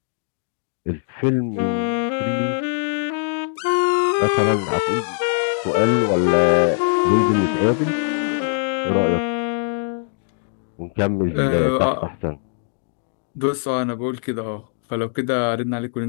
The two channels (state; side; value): silent; right; digital silence